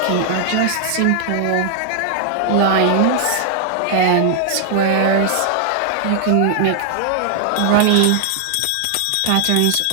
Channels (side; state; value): both; different; correlation 0.00